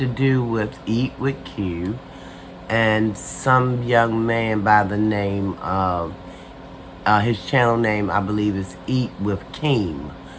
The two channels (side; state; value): both; identical; correlation 1.00